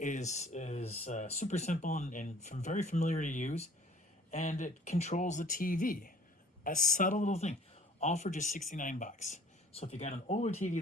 super simple and very familiar to use, and it controls the TV. A subtle little thing, all for just $69. So if you got an older TV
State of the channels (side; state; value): both; normal; correlation 0.54